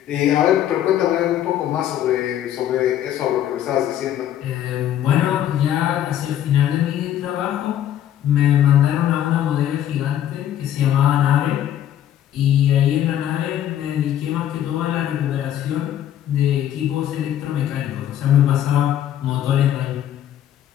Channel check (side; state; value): right; quieter; 11.2 dB